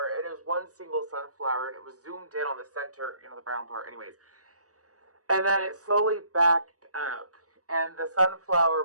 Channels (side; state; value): left; late; 0.66 ms